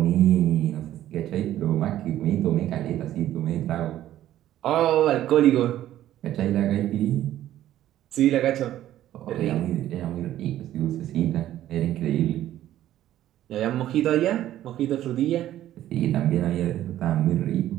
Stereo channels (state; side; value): quieter; left; 12.9 dB